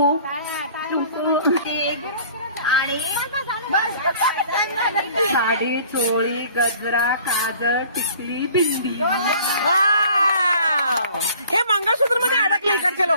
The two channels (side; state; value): both; inverted; correlation -0.51